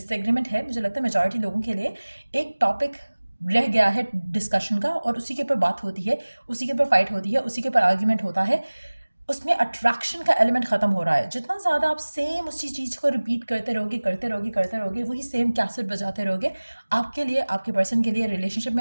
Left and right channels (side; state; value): both; inverted; correlation -1.00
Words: है, मुझे लगता है मेजॉरिटी लोगों के लिए एक टॉपिक रह गया है डिस्कशन का, और उसी के ऊपर बात होती है, उसी के ऊपर फाइट होती है, उसी के ऊपर आर्ग्यूमेंट होता है। उसमें अट्रैक्शन का एलिमेंट ख़त्म हो रहा है। जितना ज़्यादा आप सेम उसी चीज़ को रिपीट करते रहोगे, वही सेम कैसेट बजाते रहोगे, आपके लिए, आपके पर्सन के लिए रिलेशनशिप